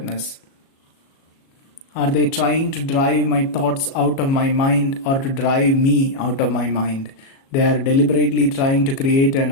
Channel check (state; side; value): late; right; 37 ms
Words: Are they trying to drive my thoughts out of my mind or to drive me out of my mind? They are deliberately trying to create an